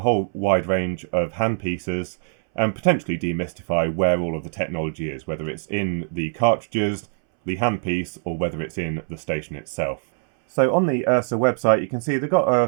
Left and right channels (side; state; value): left; silent; 63 dB below the other